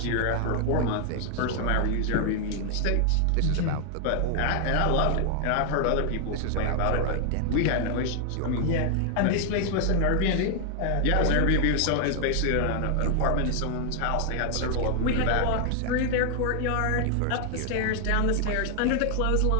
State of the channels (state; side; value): different; both; correlation 0.00